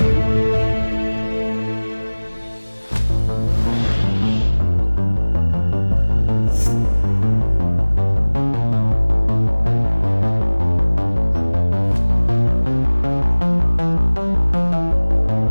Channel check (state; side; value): inverted; both; correlation -1.00